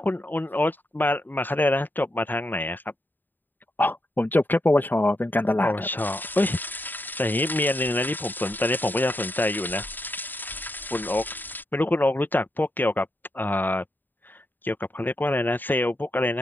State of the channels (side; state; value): right; late; 0.090 ms